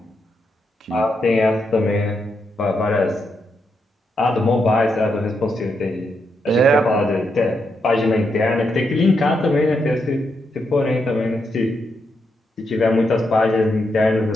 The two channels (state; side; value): normal; both; correlation 0.82